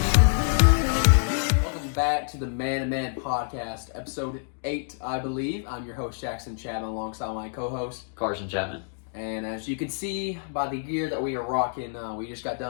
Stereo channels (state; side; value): silent; right; digital silence